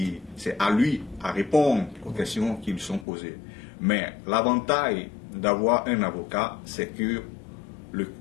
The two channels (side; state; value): right; drops out; at 3.1 s